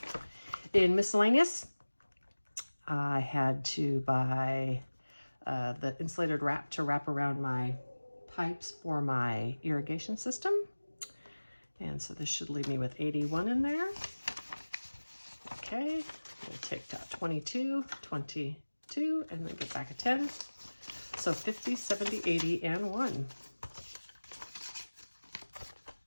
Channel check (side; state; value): both; inverted; correlation -1.00